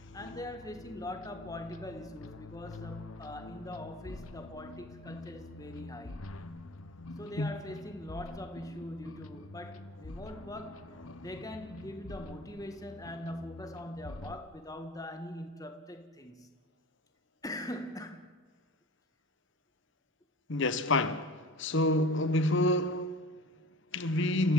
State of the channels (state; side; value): normal; both; correlation 0.38